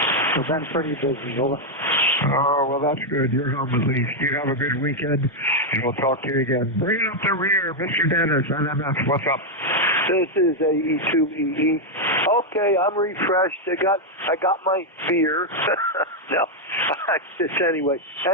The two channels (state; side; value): normal; both; correlation 0.00